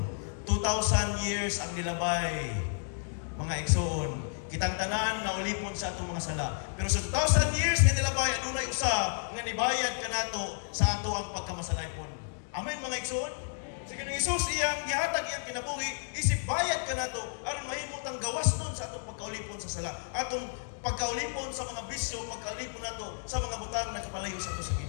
2,000 years ang nilabay. Mga igsoon, kitang tanan na ulipon sa atong mga sala. Pero sa 2,000 years nga nilabay, adunay usa nga nibayad kanato sa ato ang pagkamasalaypon. Amen mga igsoon? Sige ng Isus iyang gihatag iyang kinabuhi, isip bayad kanato aron mahimot ang gawas nun sa atong pagkaulipon sa sala. Atong pagkaulipon sa mga bisyo, pagkaulipon nato sa mga butang na kapalayo sa ato sa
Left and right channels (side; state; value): right; silent; digital silence